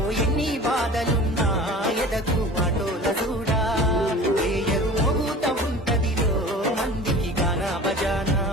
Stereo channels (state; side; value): normal; both; correlation 0.40